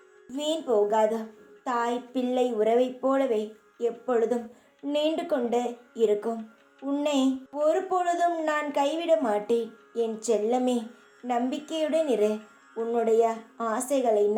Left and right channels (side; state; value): both; identical; correlation 1.00